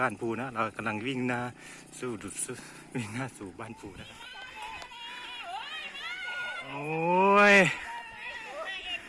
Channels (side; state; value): both; identical; correlation 1.00